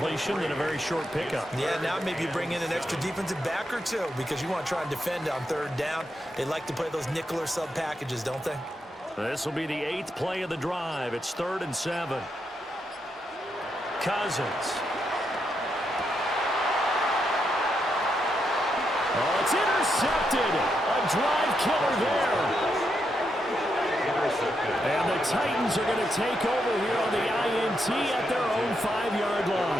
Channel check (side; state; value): both; normal; correlation 0.82